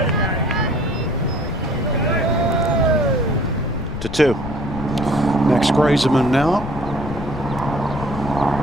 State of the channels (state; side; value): noise; left; rumble, 8 dB below the sound